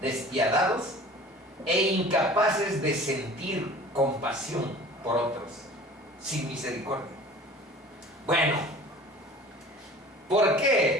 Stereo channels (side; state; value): both; normal; correlation 0.44